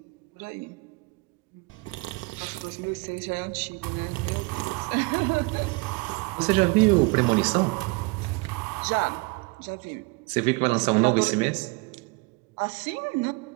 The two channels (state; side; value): quieter; left; 27.5 dB